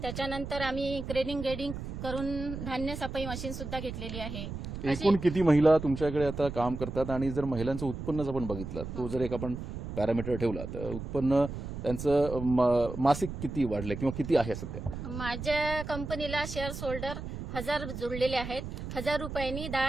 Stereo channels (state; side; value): noise; right; rumble, 7 dB below the sound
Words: आम्ही ग्रेडिंग करून धान्य सफाई मशीन सुद्धा घेतलेली आहे. एकूण किती महिला तुमच्याकडे आता काम करतात आणि जर महिलांचं उत्पन्नच आपण बघितलं तो जर एक आपण पॅरामीटर ठेवला तर उत्पन्न त्यांचं मासिक किती वाढलंय किंवा किती आहे सध्या? माझ्या कंपनीला शेअर होल्डर 1000 जोडलेले आहेत. 1000 रुपयांनी